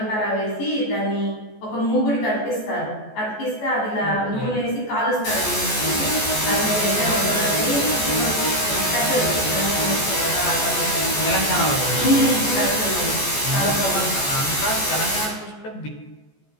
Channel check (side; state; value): right; late; 14 ms